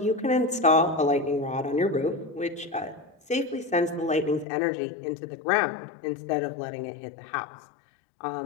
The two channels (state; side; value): drops out; right; at 4.5 s